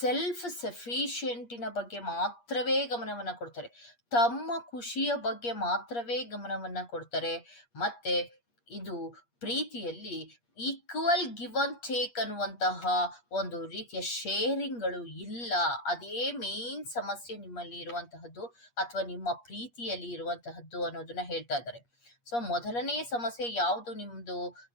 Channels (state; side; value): late; right; 8.5 ms